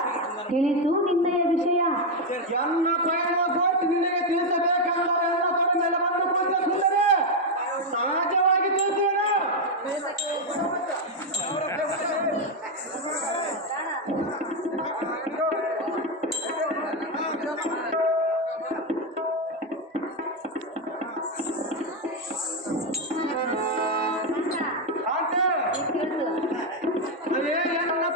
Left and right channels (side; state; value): both; normal; correlation 0.04